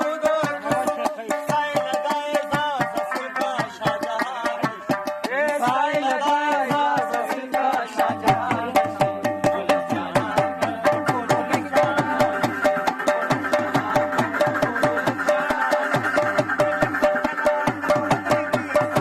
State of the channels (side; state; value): both; identical; correlation 1.00